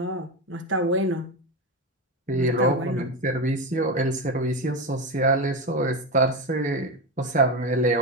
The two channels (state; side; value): normal; both; correlation 0.16